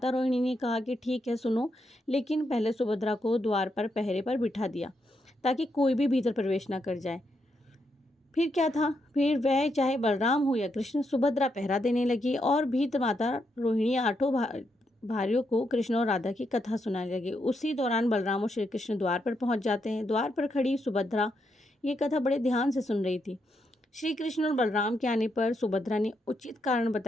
रोहिणी ने कहा कि ठीक है सुनो, लेकिन पहले सुभद्रा को द्वार पर पहरे पर बिठा दिया ताकि कोई भी भीतर प्रवेश ना कर जाए। फिर क्या था, फिर वह चाहे बलराम हो या कृष्ण, सुभद्रा पहरा देने लगी और भीतर माता रोहिणी 8 भाइयों को कृष्ण और राधा की कथा सुनाने लगे। उसी दौरान बलराम और श्री कृष्ण द्वार पर पहुंच जाते हैं। द्वार पर खड़ी सुभद्रा ये कथा बड़े ध्यान से सुन रही थी। श्री कृष्ण और बलराम के आने पर सुभद्रा ने उचित कारण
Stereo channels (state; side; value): normal; both; correlation 0.81